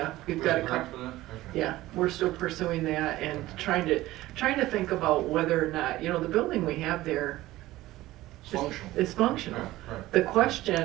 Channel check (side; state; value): left; quieter; 16.8 dB